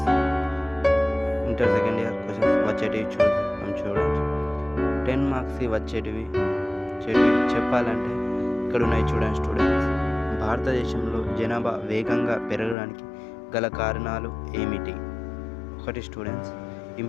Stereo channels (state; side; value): drops out; right; at 12.8 s